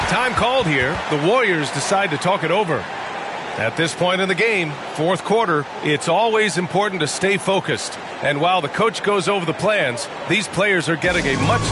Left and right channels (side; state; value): both; identical; correlation 1.00